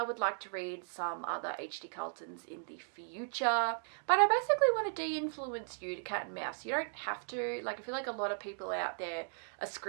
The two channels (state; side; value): silent; left; digital silence